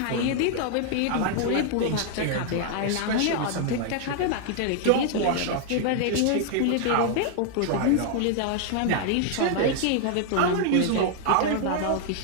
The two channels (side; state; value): both; different; correlation 0.00